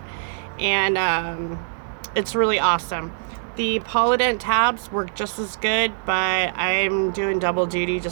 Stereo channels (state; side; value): silent; left; digital silence